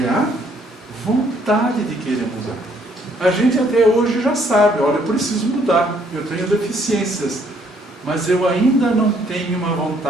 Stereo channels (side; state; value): both; normal; correlation 0.66